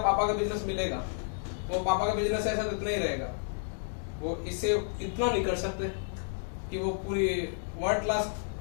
पापा का बिजनेस मिलेगा, वो पापा का बिजनेस ऐसा तो इतना ही रहेगा, वो इससे इतना नहीं कर सकते कि वो पूरी वर्ल्ड क्लास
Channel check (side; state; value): right; silent; digital silence